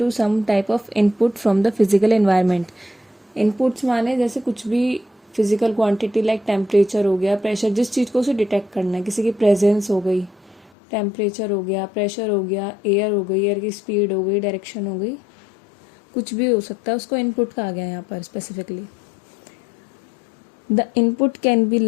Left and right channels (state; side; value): drops out; right; at 10.7 s